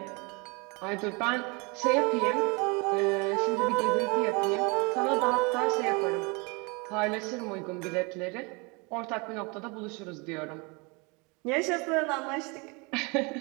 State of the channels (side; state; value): left; quieter; 29.5 dB